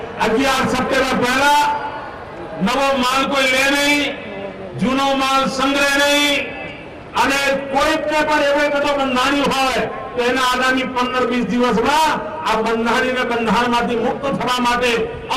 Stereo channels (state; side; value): identical; both; correlation 1.00